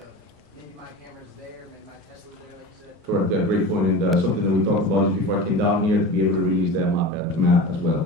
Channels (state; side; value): normal; both; correlation 0.31